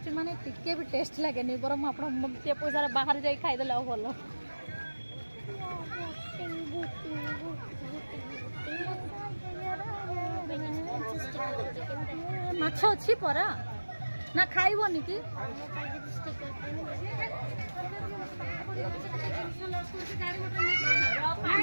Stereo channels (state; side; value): inverted; both; correlation -1.00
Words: माने टिके भी टेस्ट लगे नी बरम आपण मते पैसा बाहर जाई खाइ देला भलो माछ अछि परा ना खाइबोनी की